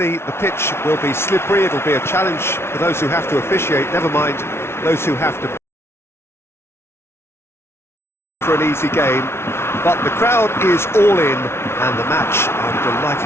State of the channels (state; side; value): late; right; 0.12 ms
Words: the pitch will be slippery. It'll be a challenge for those who have to officiate, never mind those who have to for an easy game, but the crowd is all in, and the match, I'm